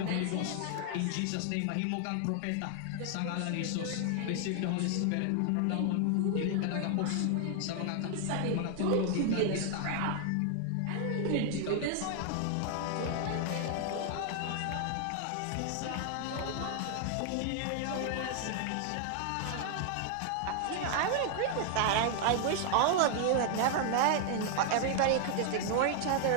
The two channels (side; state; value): both; different; correlation 0.00